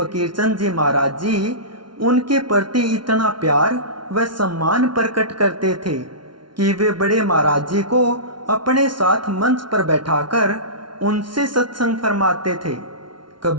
जी महाराज जी उनके प्रति इतना प्यार व सम्मान प्रकट करते थे कि वे बड़े महाराज जी को अपने साथ मंच पर बैठाकर उनसे सत्संग फरमाते थे।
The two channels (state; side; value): late; left; 0.73 ms